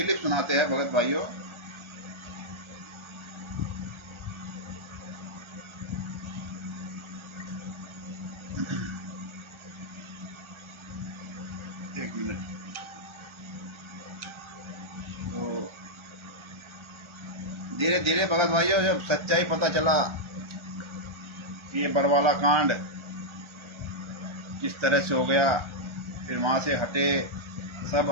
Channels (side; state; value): left; late; 1.4 ms